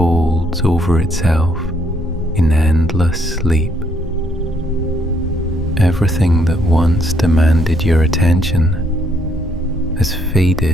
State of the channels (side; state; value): both; normal; correlation 0.70